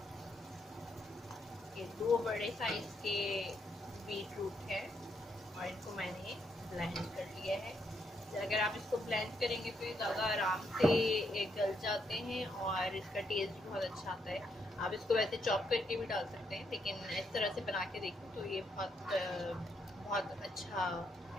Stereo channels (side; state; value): both; normal; correlation 0.77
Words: ये 2 बड़े साइज के बीट रूट है, और इनको मैंने ब्लेंड कर लिया है। अगर आप इसको ब्लेंड करेंगे तो ये ज़्यादा आराम से गल जाते हैं और इसका टेस्ट भी बहुत अच्छा आता है। आप इसको वैसे चॉप करके भी डाल सकते हैं, लेकिन इस तरह से बना के देखो तो ये बहुत अच्छा